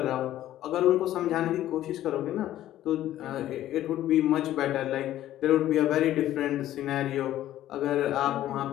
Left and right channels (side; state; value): right; quieter; 13.2 dB